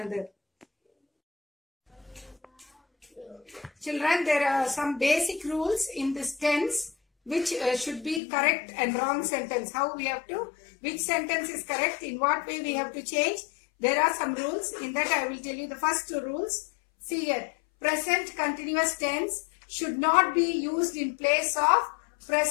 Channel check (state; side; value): drops out; right; at 8.2 s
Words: Children, there are some basic rules in this tense which should be correct and wrong sentence. How we have to, which sentence is correct, in what way we have to change. There are some rules. In that I will tell you the first two rules. See here, present continuous tense should not be used in place of